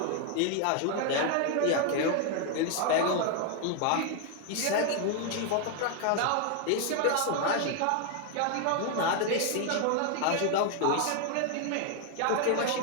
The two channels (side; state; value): both; different; correlation 0.00